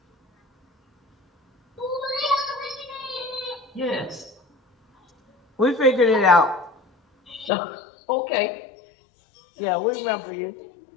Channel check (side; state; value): right; drops out; at 7.5 s